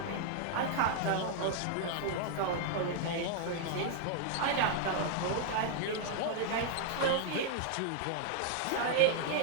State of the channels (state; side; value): different; both; correlation 0.00